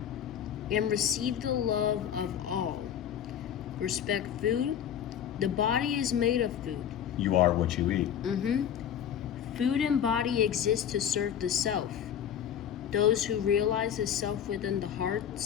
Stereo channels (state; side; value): quieter; right; 9.3 dB